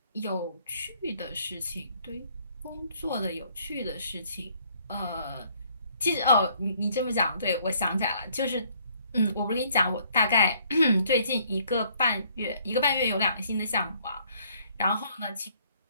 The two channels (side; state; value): both; inverted; correlation -0.64